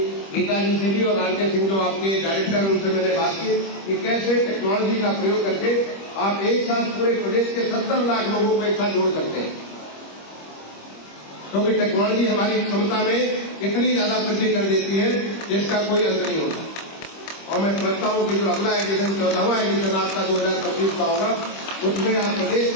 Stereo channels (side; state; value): right; late; 25 ms